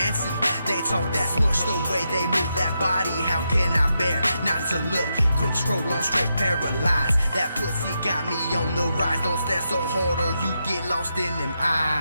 They talk that smush, the way they move that body. How can I bear not to look? Quick scroll on straight paralyzed. That pussy got me on the rise. Don't stare so hard or you get lost in them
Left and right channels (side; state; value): both; inverted; correlation -0.84